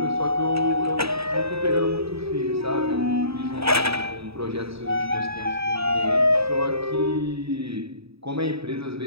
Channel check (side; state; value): left; late; 0.77 ms